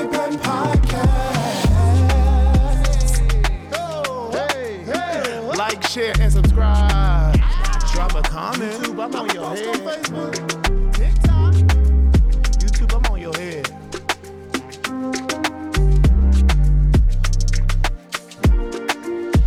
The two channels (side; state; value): both; identical; correlation 1.00